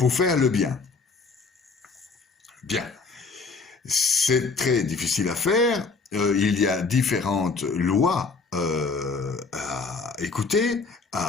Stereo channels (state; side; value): quieter; right; 4.4 dB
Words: faire le bien. Bien. C'est très difficile à faire. Il y a différentes lois à écouter,